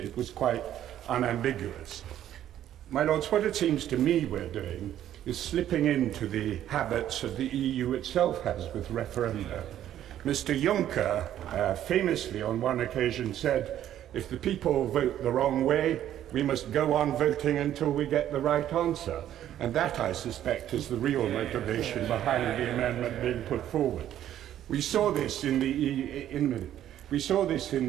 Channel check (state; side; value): quieter; left; 11.5 dB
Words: was quite unambiguous. My Lords, what it seems to me we're doing is slipping into the habits that the EU itself has with referenda. Mr. Juncker famously on one occasion said, if the people vote the wrong way, we must go on voting until we get the right answer. And that, I suspect, is the real motivation behind the amendment being put forward. We saw this in the